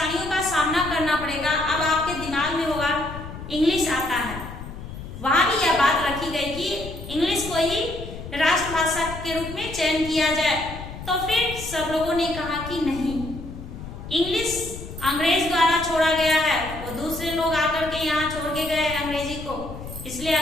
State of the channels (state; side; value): noise; left; rumble, 11 dB below the sound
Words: का सामना करना पड़ेगा। अब आपके दिमाग में होगा इंग्लिश आता है, वहां भी यह बात रखी गई कि इंग्लिश को ही राष्ट्रभाषा के रूप में चयन किया जाए। तो फिर सब लोगों ने कहा कि नहीं, इंग्लिश अंग्रेज द्वारा छोड़ा गया है, वो दूसरे लोग आकर के यहाँ छोड़ के गए अंग्रेजी को, इसलिए